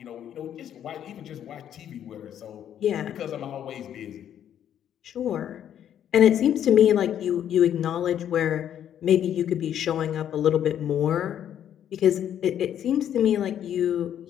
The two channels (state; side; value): quieter; right; 10.0 dB